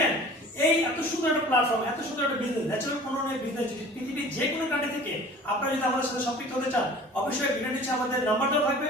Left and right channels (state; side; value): normal; both; correlation 0.45